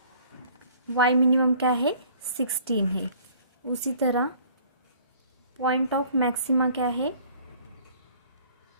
y मिनिमम क्या है 16 है। उसी तरह पॉइंट ऑफ मैक्सिमा क्या है,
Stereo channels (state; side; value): inverted; both; correlation -0.54